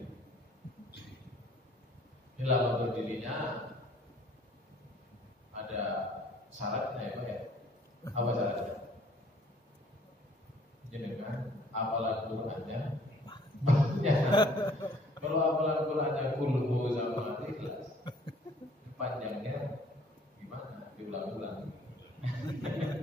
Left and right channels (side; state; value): both; normal; correlation 0.57